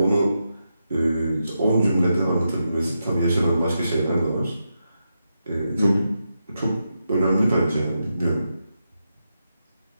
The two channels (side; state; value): both; inverted; correlation -0.86